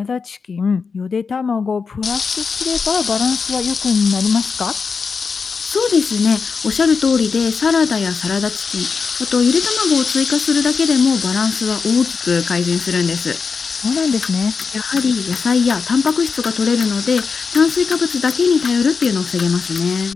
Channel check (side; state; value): right; quieter; 5.2 dB